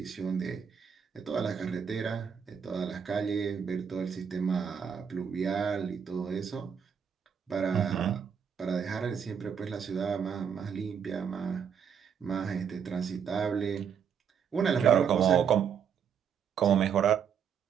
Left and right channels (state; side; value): quieter; left; 7.4 dB